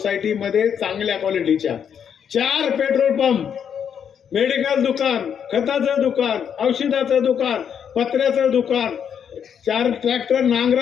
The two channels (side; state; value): right; quieter; 8.0 dB